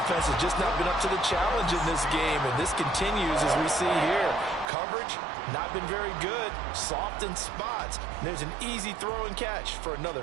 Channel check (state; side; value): drops out; left; at 4.7 s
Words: has just not been up to the challenge in this game, and this continues as we see here. Coverage, not been very good, soft in spots. And there's an easy throw and catch for another